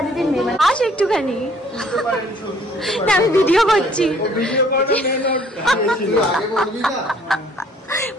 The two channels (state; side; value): normal; both; correlation 0.59